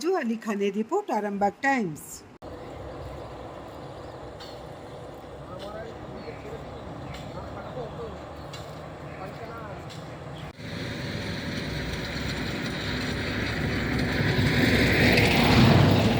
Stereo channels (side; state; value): both; identical; correlation 1.00